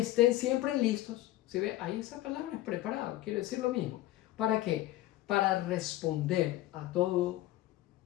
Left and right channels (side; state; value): right; quieter; 15.6 dB